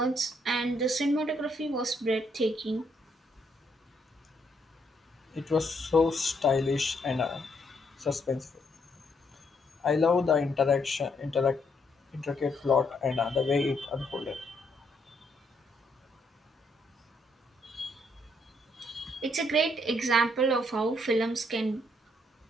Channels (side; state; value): both; normal; correlation 0.73